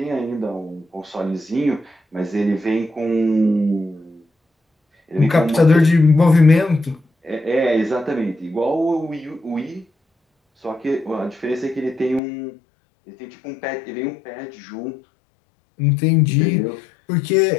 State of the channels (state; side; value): drops out; right; at 12.2 s